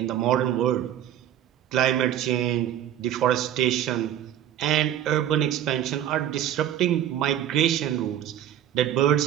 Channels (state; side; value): quieter; left; 11.1 dB